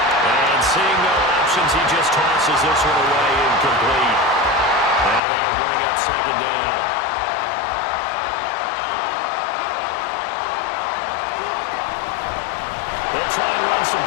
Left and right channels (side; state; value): right; drops out; at 5.2 s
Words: And seeing no options, he just tosses this one away incomplete. Now that'll bring up 2nd down. They'll try and run some